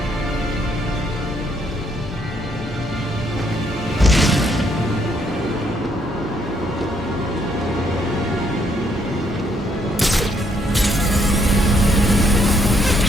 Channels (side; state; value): both; normal; correlation 0.71